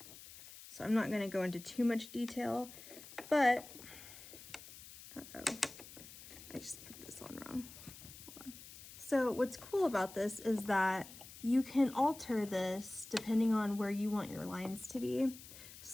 So I'm not going to go into too much detail, but I just put this on wrong. Hold on. So what's cool about this is that you can alter this depending on where you want your lines to be.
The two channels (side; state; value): left; noise; hiss, 16 dB below the sound